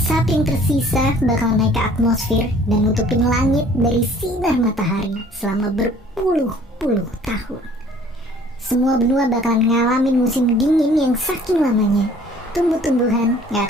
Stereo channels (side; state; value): both; normal; correlation 0.54